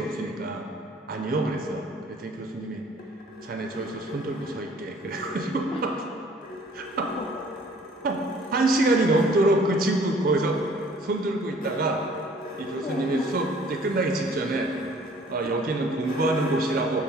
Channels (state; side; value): normal; both; correlation 0.55